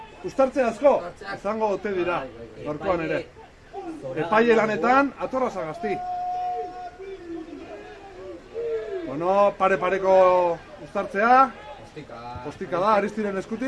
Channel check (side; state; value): both; identical; correlation 1.00